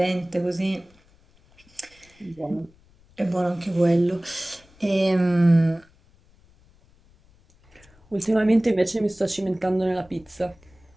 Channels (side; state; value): left; noise; rumble, 30 dB below the sound